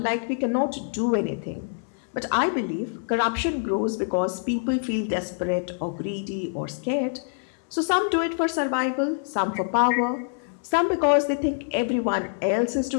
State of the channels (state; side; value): silent; right; 61 dB below the other